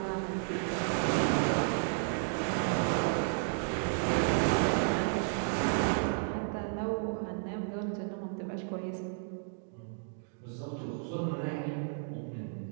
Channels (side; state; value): left; silent; digital silence